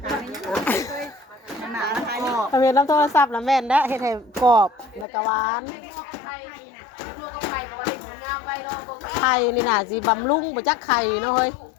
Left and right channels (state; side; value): drops out; right; at 5.1 s